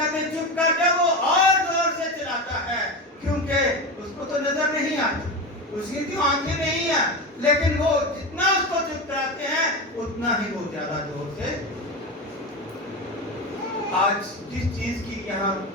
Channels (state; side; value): normal; both; correlation 0.22